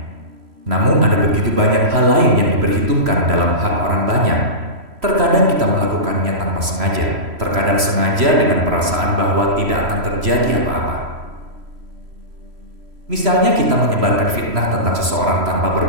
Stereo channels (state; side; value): late; left; 3.0 ms